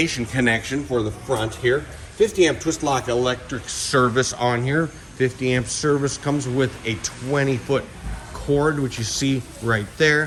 connection for the front here. 50 amp twist lock electric service on here. 50 amp service comes with a 20-foot cord, which you see right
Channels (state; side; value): identical; both; correlation 1.00